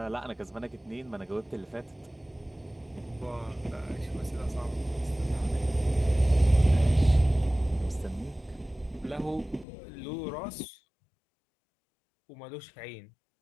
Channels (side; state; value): right; drops out; at 9.7 s